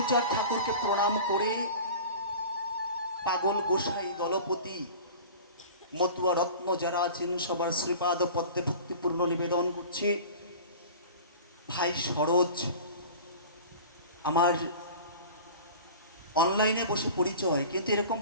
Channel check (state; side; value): inverted; both; correlation -0.39